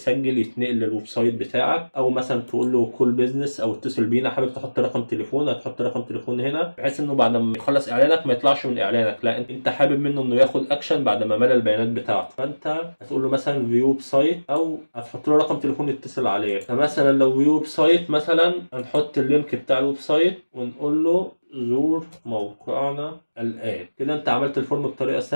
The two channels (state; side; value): inverted; both; correlation -1.00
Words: يتنقل للويب سايت بتاعك، او مثلا تقول له كول بيزنس او اتصل بينا. حابب تحط رقم تليفون، هتحط رقم تليفون هنا، بحيث انه بعد ما يخلص اعلانك ما يطلعش من اعلانك، لا انت حابب منه انه ياخد اكشن بعد ما ملى البيانات بتاعته. فانت هتقول له مثلا فيو ويب سايت، او هتحط له رقم تليفون يتصل عليه. فمثلا لو فيو ويب سايت، مثلا هنحط اللينك بتاع الويب سايت ونقول له زور موقعنا الآن. كده انت عملت الفورم بطريقة